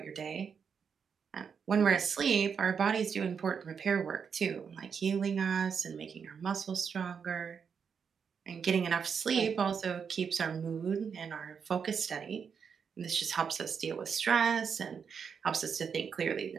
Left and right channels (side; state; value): left; quieter; 6.5 dB